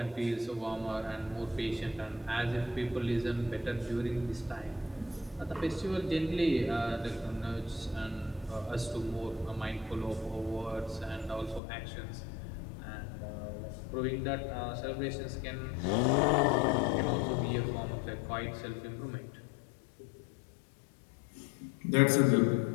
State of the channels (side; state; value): right; drops out; at 11.6 s